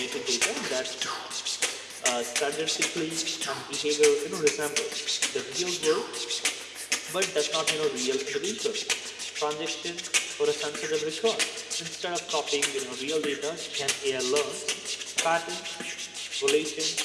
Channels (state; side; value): identical; both; correlation 1.00